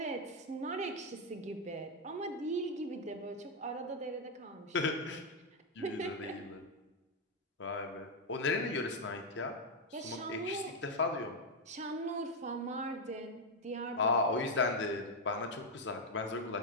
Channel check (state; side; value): normal; both; correlation 0.02